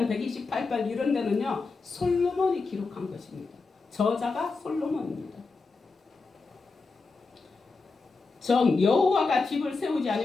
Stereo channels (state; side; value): quieter; right; 4.1 dB